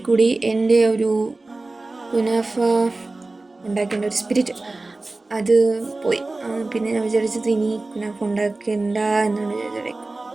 കൂടി എൻ്റെ ഒരു കുനാഫ ഉണ്ടാക്കേണ്ട ഒരു സ്പിരിറ്റ് അത് പോയി. പിന്നെ ഞാൻ വിചാരിച്ചത് ഇനി കുനാഫ ഉണ്ടാക്കേണ്ട എന്നാണ് വിചാരിച്ചത്.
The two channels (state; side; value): quieter; left; 3.2 dB